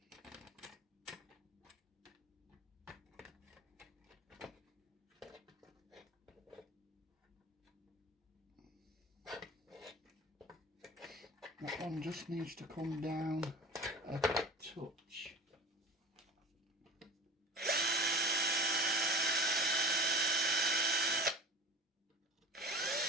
That one just needs to come down a touch.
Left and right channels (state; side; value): normal; both; correlation 0.37